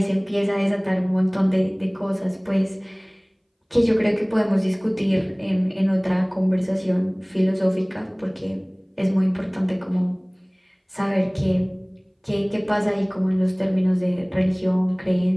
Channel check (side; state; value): both; identical; correlation 1.00